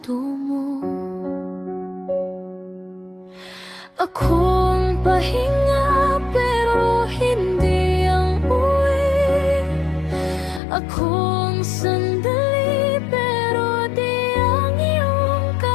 mo. Akong pahinga pero hindi ang uwi, akong sandali pero di ang iyong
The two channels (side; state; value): right; drops out; at 10.6 s